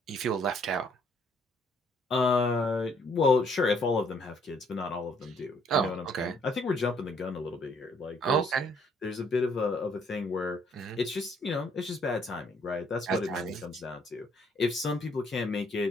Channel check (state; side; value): normal; both; correlation 0.66